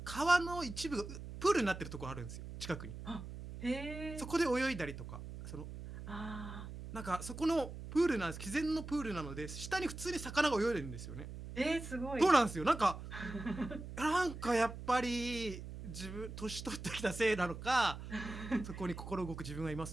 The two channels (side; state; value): right; noise; hum, 10 dB below the sound